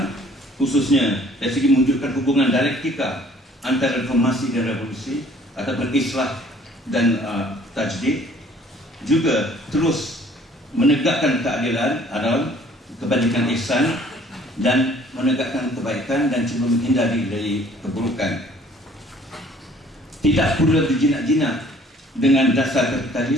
khususnya dari segi mewujudkan hubungan dialektika antara reformasi dan revolusi ataupun islah dan tajdid, juga terus menegakkan keadilan, adalah kebajikan ihsan, dan menegakkan kebaikan dan cuba menghindari dari keburukan. Tidak pula berjinak-jinak dengan dasar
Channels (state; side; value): normal; both; correlation 0.56